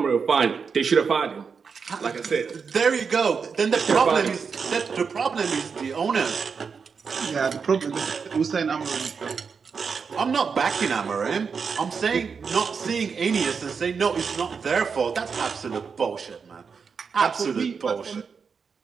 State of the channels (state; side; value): quieter; left; 5.7 dB